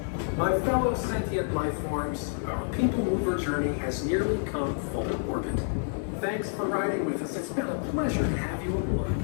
My fellow sentient life forms, our PeopleMover journey has nearly come full orbit. Thanks for riding with us. It's been a pleasure to have you aboard.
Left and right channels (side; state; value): right; silent; digital silence